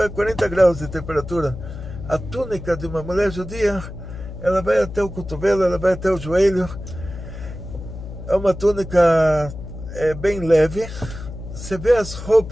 é 40 graus de temperatura, a túnica de uma mulher judia, ela vai até o cotovelo, ela vai até o joelho, é uma túnica bem leve. Você vê as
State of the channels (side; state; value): left; noise; hum, 11 dB below the sound